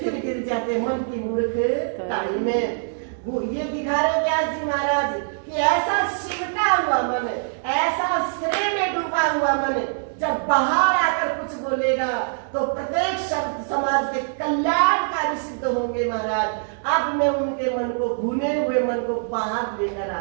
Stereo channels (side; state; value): left; silent; 63 dB below the other